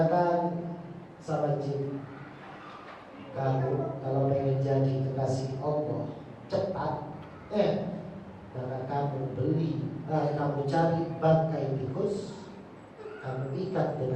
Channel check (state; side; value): identical; both; correlation 1.00